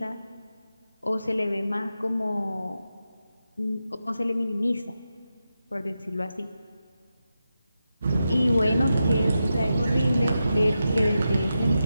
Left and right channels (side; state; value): both; inverted; correlation -0.89